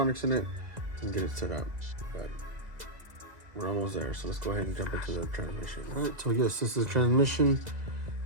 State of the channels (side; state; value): left; late; 2.0 ms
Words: in it and get it set up. But we're almost there. So let's go ahead and jump into the transmission. All right, so yes, this is the transmission.